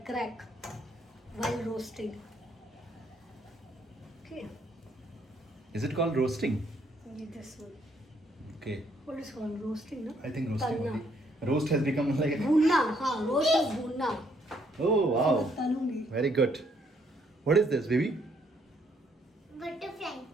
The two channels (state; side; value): normal; both; correlation 0.69